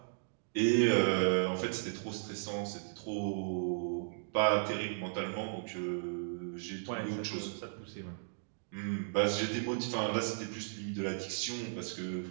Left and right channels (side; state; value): left; silent; digital silence